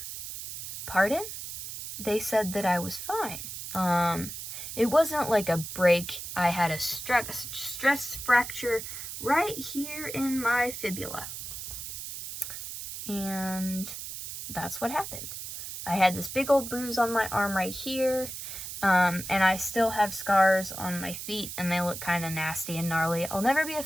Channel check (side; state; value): right; noise; hiss, 8 dB below the sound